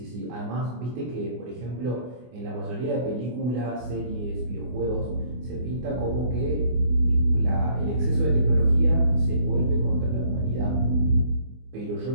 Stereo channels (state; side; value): late; left; 24 ms